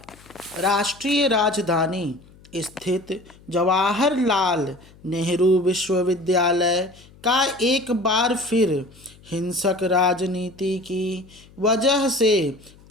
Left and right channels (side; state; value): left; noise; hum, 25 dB below the sound